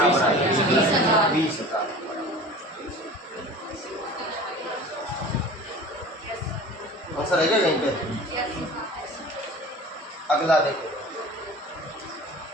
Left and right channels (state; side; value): normal; both; correlation 0.40